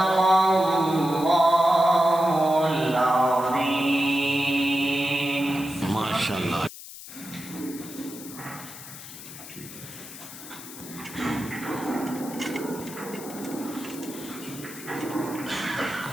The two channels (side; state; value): left; noise; hiss, 14 dB below the sound